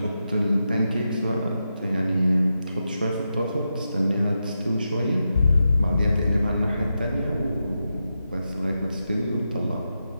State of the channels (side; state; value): both; inverted; correlation -0.88